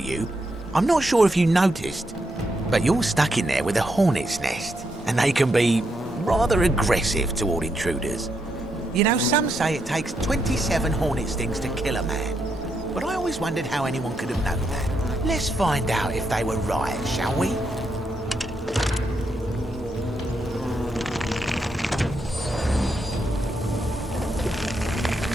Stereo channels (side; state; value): both; normal; correlation 0.81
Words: I'm not sure if you noticed, but you're stuck in there with a hornet's nest, and they can be rather aggressive toward intruders. You know, some say it takes 27 hornet stings to kill a man, but I always wondered how anyone could have known that. Let's find out if they were right, shall we?